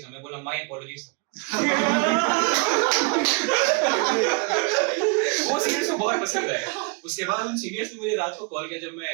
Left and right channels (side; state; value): left; quieter; 32.5 dB